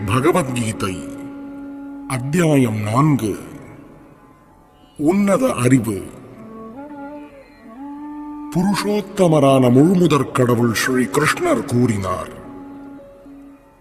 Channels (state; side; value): identical; both; correlation 1.00